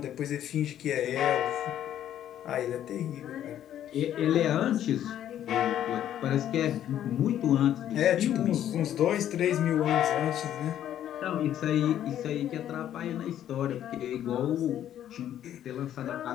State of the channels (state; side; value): quieter; right; 11.0 dB